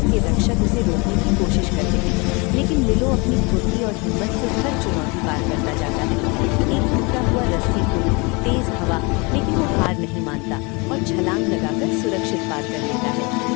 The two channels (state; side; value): quieter; right; 28.7 dB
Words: के रक्षक उसे रोकने की कोशिश करते हैं, लेकिन मिलो अपनी फुर्ती और हिम्मत से हर चुनौती पार करता जाता है। एक टूटा हुआ रस्सी पुल, तेज हवा, लेकिन वो हार नहीं मानता और छलांग लगाकर सुरक्षित पार कर लेता है।